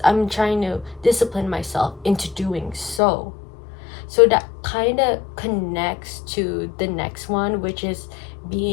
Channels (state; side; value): drops out; right; at 3.0 s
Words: I'm trying to discipline myself into doing so. So that kind of connects to the next one, which is